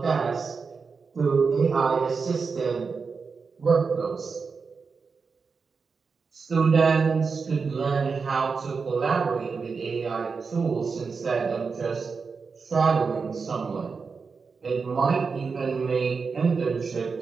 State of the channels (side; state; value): left; quieter; 5.0 dB